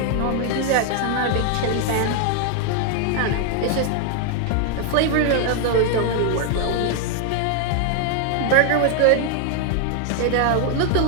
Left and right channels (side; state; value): both; different; correlation 0.00